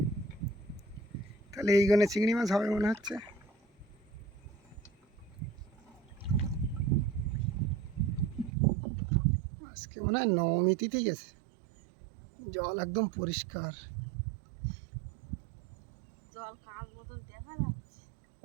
তাহলে এইখানে চিংড়ি মাছ হবে মনে হচ্ছে। আজকে মনে হয় নবমী তিথি গেছে, জল একদম পরিষ্কার। জল কাঁচ মতন দেখা যাচ্ছে।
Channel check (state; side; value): drops out; left; at 8.5 s